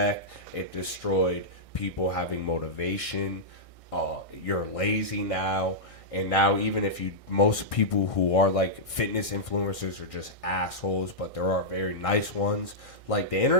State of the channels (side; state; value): right; late; 1.6 ms